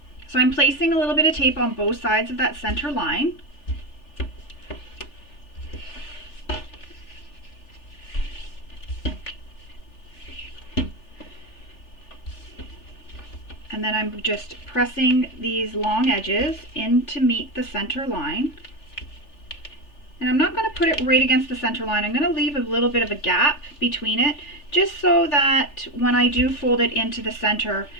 So I'm placing a little bit of tape on both sides of that center line. And then I'm just pressing these long edges in to meet the center line. And I'm not going to put it right against the center line. I'm going to leave a little bit of a gap between it, just so that when I do fold it into the center,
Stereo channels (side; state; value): right; late; 3.4 ms